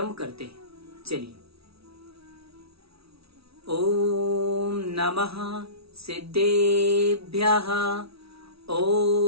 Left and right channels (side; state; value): left; late; 0.76 ms